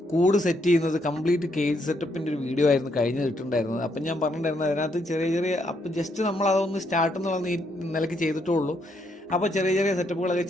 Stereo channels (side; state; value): both; normal; correlation 0.75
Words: കൂട് സെറ്റ് ചെയ്യുന്നത് കംപ്ലീറ്റ് കേജ് സെറ്റപ്പിൻ്റെ ഒരു വീഡിയോ ആയിരുന്നു കഴിഞ്ഞ് ഇട്ടിട്ടുണ്ടായിരുന്നത്. അപ്പം ഞാൻ പറഞ്ഞിട്ടുണ്ടായിരുന്നു അതിനകത്ത് ചെറിയ ചെറിയ അപ്പം ജസ്റ്റ് നമ്മൾ അതൊന്ന് സ്റ്റാർട്ട് എന്നുള്ള നിലയ്ക്ക് ചെയ്തിട്ടുള്ളൂ. അപ്പോൾ ചെറിയ ചെറിയ സെറ്റപ്പുകളൊക്കെ